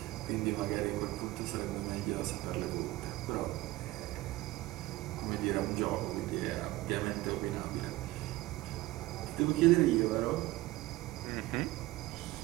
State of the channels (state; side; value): quieter; left; 18.3 dB